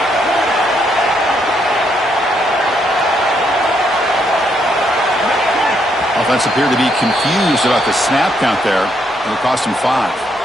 Offense appeared to be confused about the snap count there. It'll cost him 5.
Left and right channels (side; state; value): both; normal; correlation 0.74